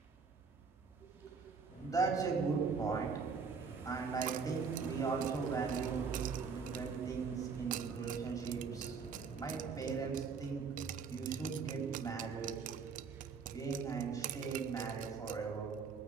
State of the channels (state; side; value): quieter; left; 5.5 dB